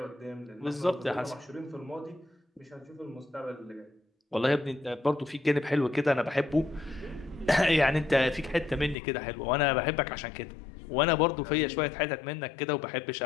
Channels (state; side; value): drops out; right; at 9.0 s